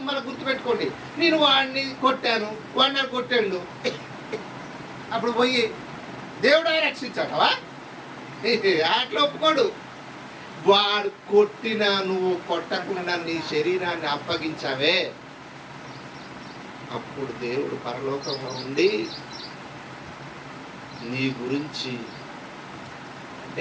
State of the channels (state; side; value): identical; both; correlation 1.00